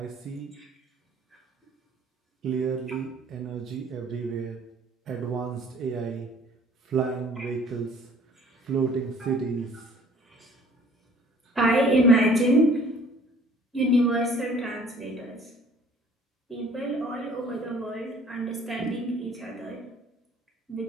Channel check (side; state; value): both; normal; correlation 0.54